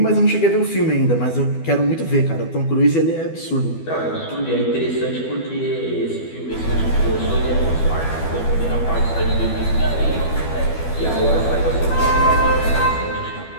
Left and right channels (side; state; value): right; late; 12 ms